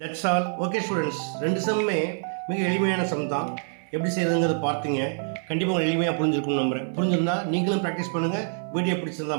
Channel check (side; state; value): left; silent; 57 dB below the other